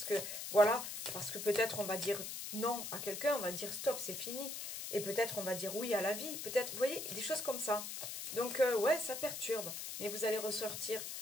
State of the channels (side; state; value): left; noise; hiss, 6 dB below the sound